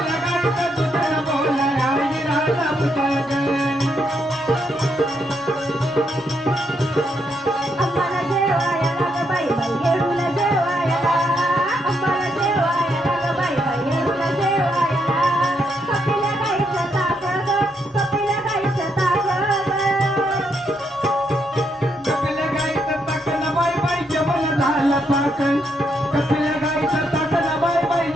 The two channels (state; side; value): normal; both; correlation 0.77